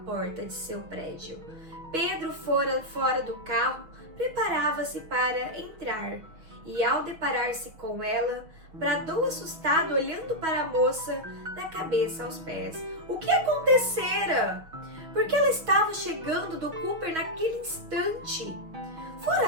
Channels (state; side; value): late; left; 6.4 ms